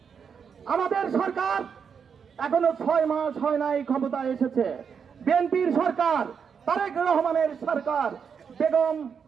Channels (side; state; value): left; quieter; 6.7 dB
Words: আমাদের সরকার এখনো 6 মাস হয় নাই ক্ষমতায় এসেছে। বিএনপির সরকার, তারেক রহমানের সরকার, বেগম